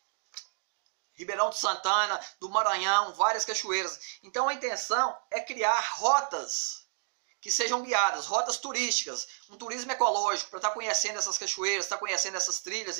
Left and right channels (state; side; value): silent; left; digital silence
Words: Ribeirão de Santana, do Maranhão, várias cachoeiras. Então a intenção é criar rotas que sejam guiadas, rotas turísticas, um turismo ecológico, para estar conhecendo essas cachoeiras, estar conhecendo essas